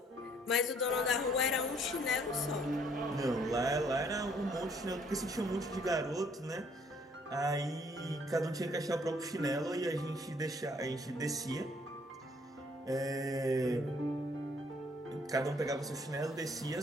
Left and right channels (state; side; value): normal; both; correlation 0.64